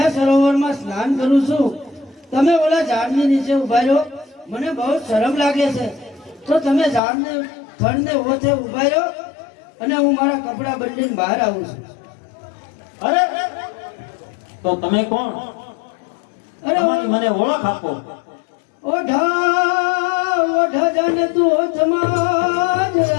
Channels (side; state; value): right; drops out; at 7.0 s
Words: સરોવરમાં સ્નાન કરું છું. તમે ઓલા ઝાડની નીચે ઉભા રહો. મને બહુ શરમ લાગે છે તો તમે ઝાડને ફળને ઓથે ઉભા રહો અને હું મારા કપડા બદલીને બહાર આવું છું. અરે તો તમે કોણ? અરે તમારી મને ઓળખ આપો. ઓઢા ઓઢા જાને તું ઓથમાં જ